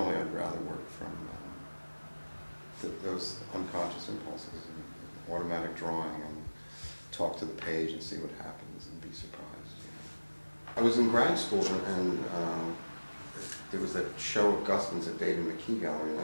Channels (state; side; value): inverted; both; correlation -1.00